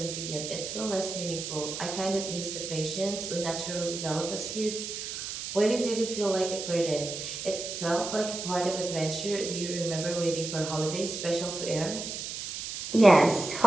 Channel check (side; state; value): right; noise; hiss, 6 dB below the sound